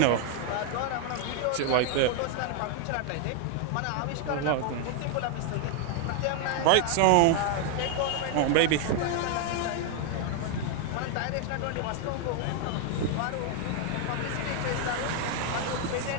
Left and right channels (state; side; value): different; both; correlation 0.00